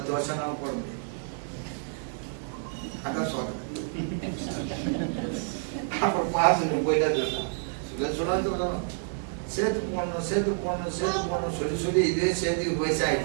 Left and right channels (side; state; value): left; silent; digital silence